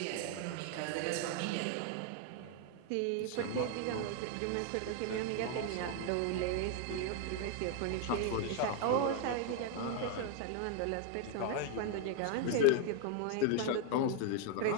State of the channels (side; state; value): both; different; correlation 0.00